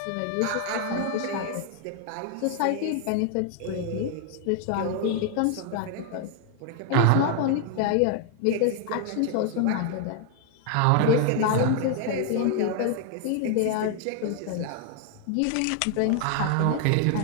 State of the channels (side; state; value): both; different; correlation 0.00